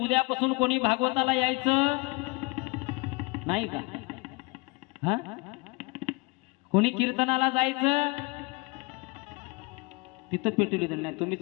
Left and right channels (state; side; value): quieter; right; 26.5 dB